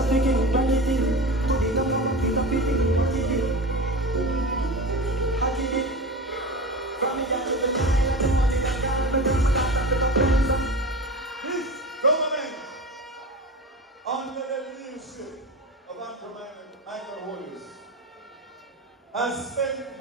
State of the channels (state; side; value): normal; both; correlation 0.29